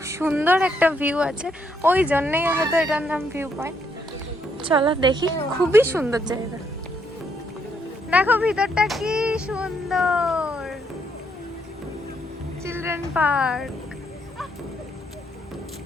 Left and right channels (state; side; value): normal; both; correlation 0.74